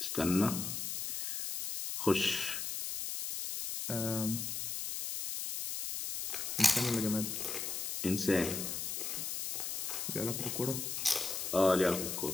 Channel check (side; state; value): left; noise; hiss, 3 dB below the sound